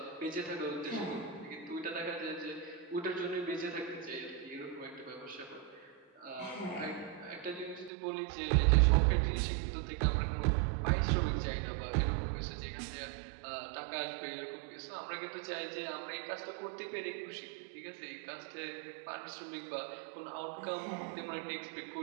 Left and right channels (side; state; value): left; drops out; at 7.9 s